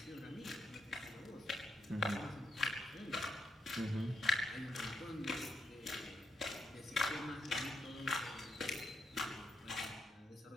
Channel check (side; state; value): both; normal; correlation 0.82